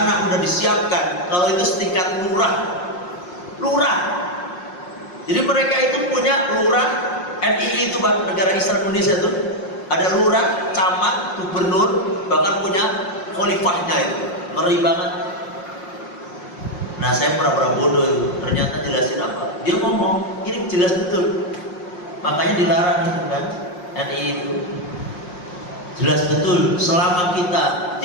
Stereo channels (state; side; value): late; right; 5.6 ms